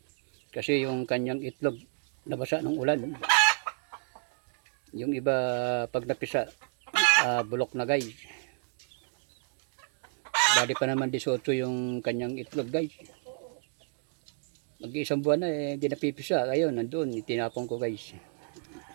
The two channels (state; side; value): silent; left; 57 dB below the other